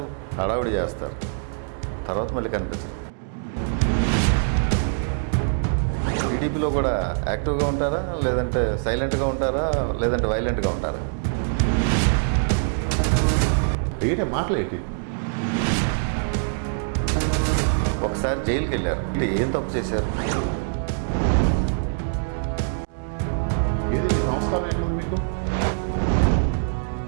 హడావిడి చేస్తారు, తర్వాత మళ్ళీ కనిపించరు. టీడీపీలో కూడా యాక్టివ్గా ఉంటారా, లేదంటే సైలెంట్గా ఉంటారా, లేదంటే వైలెంట్గా ఉంటారా? ఏంటి మాటలేంటి? ఒకసారి జైలుకి వెళ్ళారు, అంటే ఏం తప్పు చేశారు? ఏది మీ సంస్కారం ఏంటి మీకు?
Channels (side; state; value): left; silent; digital silence